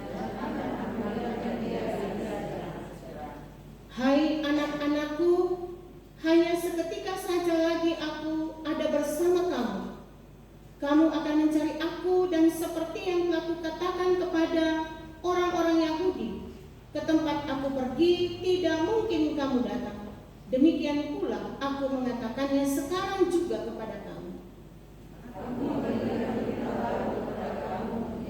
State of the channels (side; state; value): both; identical; correlation 1.00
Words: Hai anak-anakku, hanya seketika saja lagi aku ada bersama kamu. Kamu akan mencari aku, dan seperti yang telah kukatakan kepada orang-orang Yahudi, ke tempat aku pergi tidak mungkin kamu datang. Demikian pula aku mengatakannya sekarang juga kepada kamu.